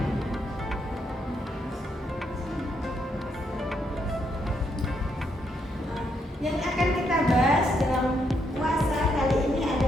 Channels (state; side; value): normal; both; correlation 0.77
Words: Yang akan kita bahas dalam puasa kali ini